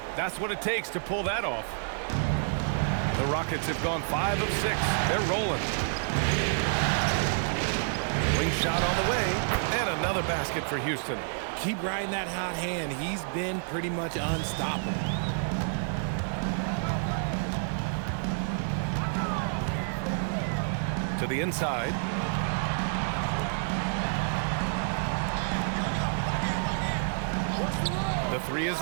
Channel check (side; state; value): left; silent; digital silence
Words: That's what it takes to pull that off. The Rockets have gone 5 of 6. They're rolling. Wing shot on the way, and another basket for Houston. Keep riding that hot hand. He's been pretty much unstoppable. To the inside. The three is